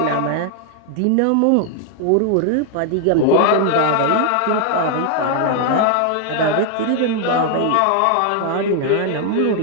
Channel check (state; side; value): different; both; correlation 0.00